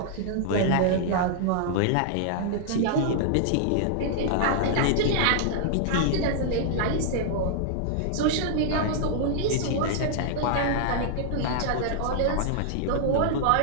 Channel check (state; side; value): different; both; correlation -0.01